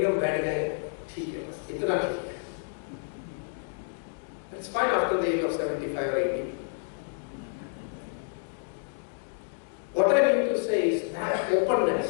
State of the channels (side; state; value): right; silent; digital silence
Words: हम बैठ गए, ठीक है बस इतना ठीक है. It's fine after the age of 75 or 80. What I mean to say is that openness